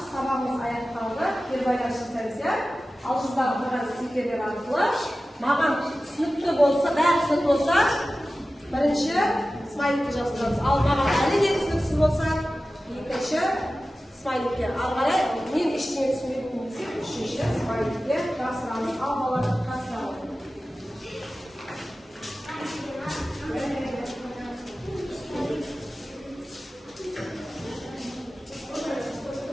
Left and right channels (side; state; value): both; normal; correlation 0.95